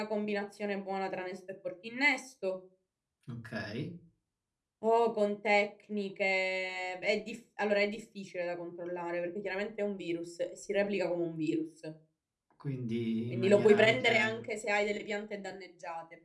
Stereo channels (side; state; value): both; identical; correlation 1.00